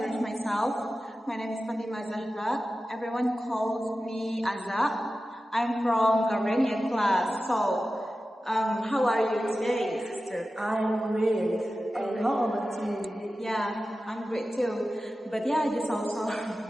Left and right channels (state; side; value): normal; both; correlation 0.94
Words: myself. My name is Fatima Zahra. Everyone calls me Azza. I'm from Garmenian class. So, how are you today, sister? I'm great. And how about you? Yeah, I'm great too. But yeah, just also.